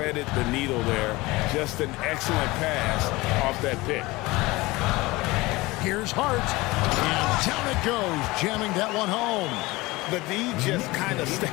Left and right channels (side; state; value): right; quieter; 21.4 dB